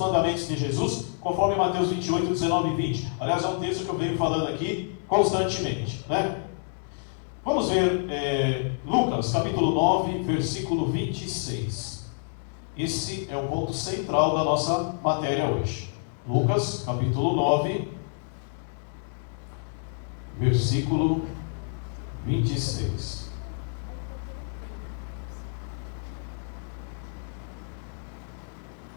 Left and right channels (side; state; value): right; silent; digital silence